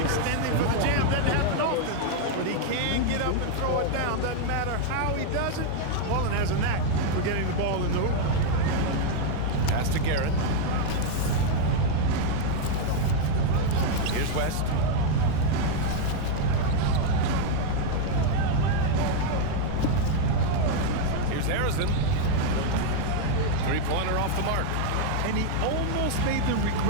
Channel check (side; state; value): both; different; correlation 0.00